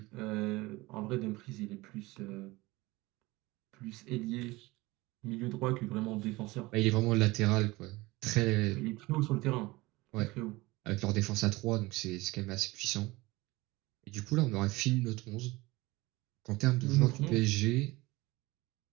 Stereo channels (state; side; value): quieter; left; 21.2 dB